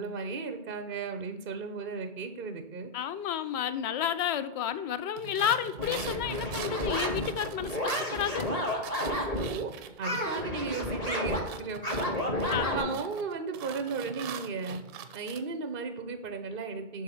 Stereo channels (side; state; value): left; late; 2.2 ms